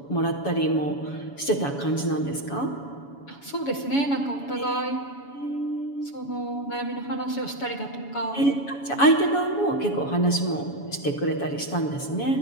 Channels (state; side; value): late; right; 7.1 ms